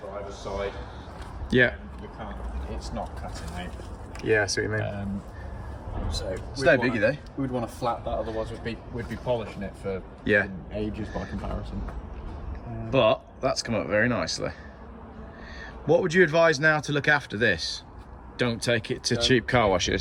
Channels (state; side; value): identical; both; correlation 1.00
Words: the driver's side. Yeah. We can't, it's not cutting out. Yeah, I see what you mean. So it's no biggie though. We'd want to flat that, otherwise we'd be polishing it for ages by comparison. But that's come up very nicely. What would you advise now to look after this? Don't take it to cheap car